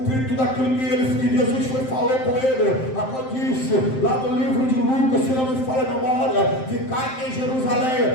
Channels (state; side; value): late; right; 7.7 ms